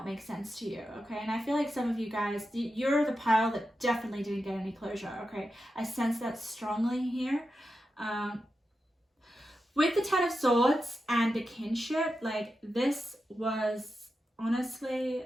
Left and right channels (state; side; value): normal; both; correlation 0.90